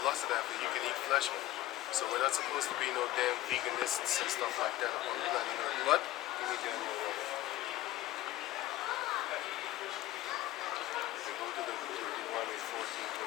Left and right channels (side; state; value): right; quieter; 15.8 dB